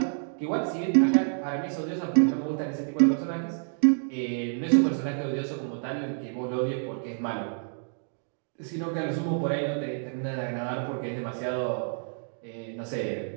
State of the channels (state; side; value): silent; left; digital silence